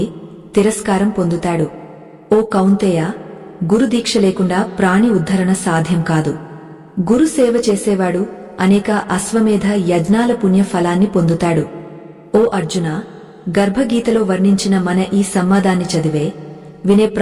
తిరస్కారం పొందుతాడు. ఓ కౌంతేయ, గురుదీక్ష లేకుండా ప్రాణి ఉద్ధరణ సాధ్యం కాదు. గురు సేవ చేసేవాడు అనేక అశ్వమేధ యజ్ఞాల పుణ్య ఫలాన్ని పొందుతాడు. ఓ అర్జున, గర్భగీతలో వర్ణించిన మన ఈ సంవాదాన్ని చదివే, వినే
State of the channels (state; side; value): identical; both; correlation 1.00